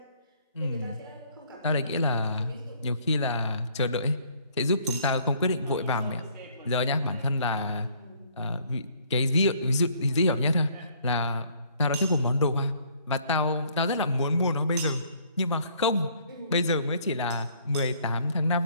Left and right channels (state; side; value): inverted; both; correlation -0.62